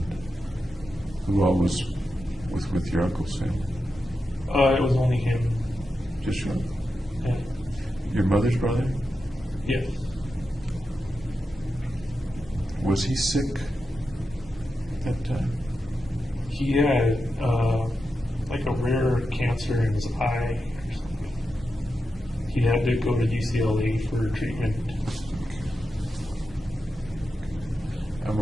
who all was with your uncle's family? It was only him. Just your uncle? Yeah. Your mother's brother? Yes. Was he sick at that time? He had like a rare cancer in his eye or something. He had to go to UCLA for treatment. I'm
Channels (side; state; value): both; normal; correlation 0.89